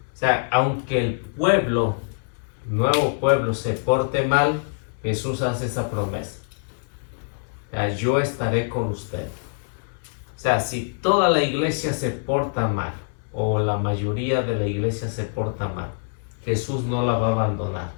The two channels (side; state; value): right; silent; 62 dB below the other